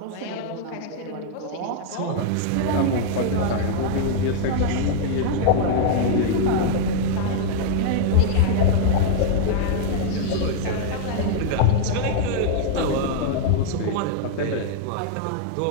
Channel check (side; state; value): both; different; correlation -0.01